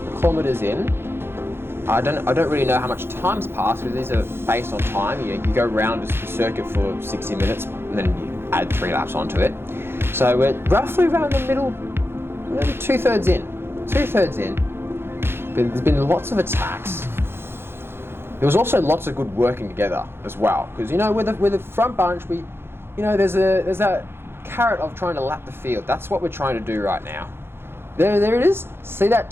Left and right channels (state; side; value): late; left; 0.11 ms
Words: kilometers in. I don't really know how much time's passed because these are based on time. You go around the circuit for 60 minutes and then you add 3 laps onto it. So we're roughly around the middle, maybe 2/3 in. 2/3 in. But there's been lots of attacks. There was also lots of good working together as well, because with the front bunch, there's that carrot of trying to lap the field. That's what we're trying to do right now. There it is. See that